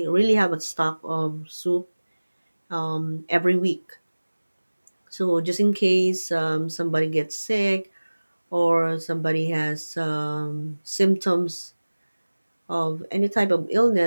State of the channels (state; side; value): inverted; both; correlation -1.00